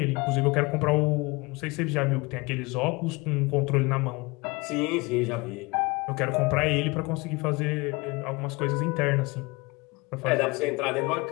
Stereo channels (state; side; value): quieter; right; 25.2 dB